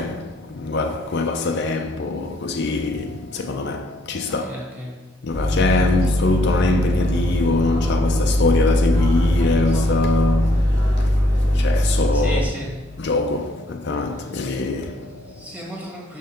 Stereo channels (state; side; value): normal; both; correlation 0.68